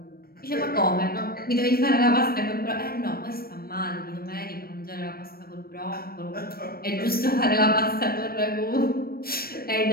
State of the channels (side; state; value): right; late; 0.44 ms